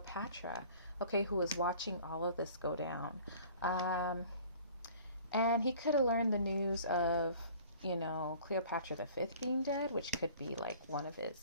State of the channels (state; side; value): inverted; both; correlation -0.49